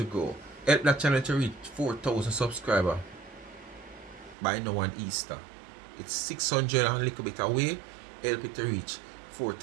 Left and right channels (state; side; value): drops out; left; at 4.4 s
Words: grow. Help that channel to reach 4,000 subscribers by now on Easter. It's 600 and a little bit away. Help it to reach